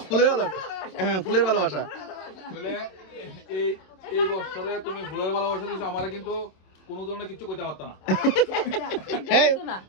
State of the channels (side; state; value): right; late; 26 ms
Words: ফুলের ভালোবাসা। হ্যাঁ ফুলের ভালোবাসা। বলে এই বছরে তুমি ফুলের ভালোবাসা দিছো, আমারে কিন্তু কোনো ধরনের কিছু কইতে পারতা না। এই